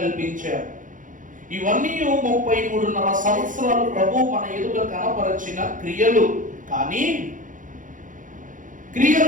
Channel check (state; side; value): late; left; 0.38 ms